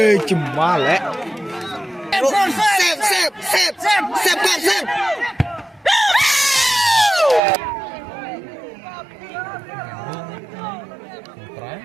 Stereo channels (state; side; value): drops out; left; at 7.4 s